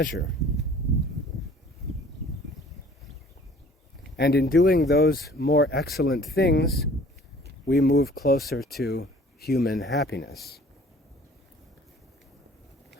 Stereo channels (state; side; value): normal; both; correlation 0.51